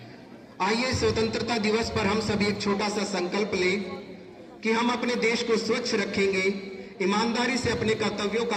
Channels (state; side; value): identical; both; correlation 1.00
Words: आइए स्वतंत्रता दिवस पर हम सभी एक छोटा सा संकल्प लें कि हम अपने देश को स्वच्छ रखेंगे, ईमानदारी से अपने कर्तव्यों